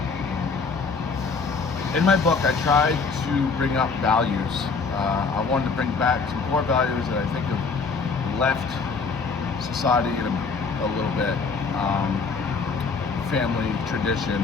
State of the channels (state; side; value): quieter; right; 4.8 dB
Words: In my book, I tried to bring up values. I wanted to bring back some core values that I think have left society in a little bit. Family, tradition.